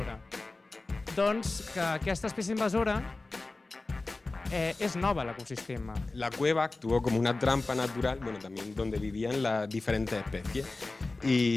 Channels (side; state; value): right; quieter; 3.3 dB